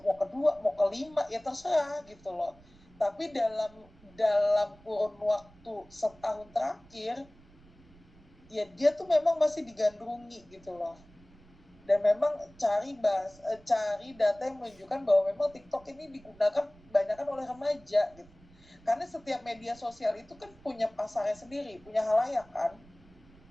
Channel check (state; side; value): noise; right; rumble, 26 dB below the sound